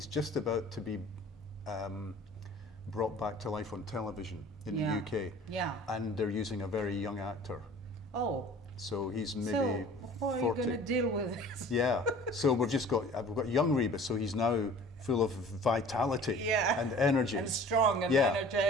just about to be brought back to life on television in the UK. Yeah. And they're using a very young actor. Oh. So he's maybe so how 40. are you going to deal with this? Yeah. So we've got young Rebus, so he's now full of vitality and energy. And strong and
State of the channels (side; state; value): both; normal; correlation 0.46